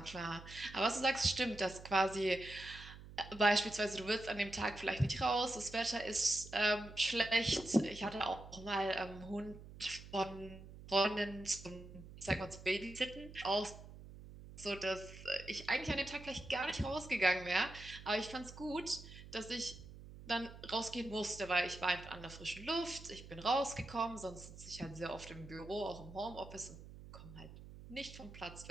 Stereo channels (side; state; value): right; noise; hum, 15 dB below the sound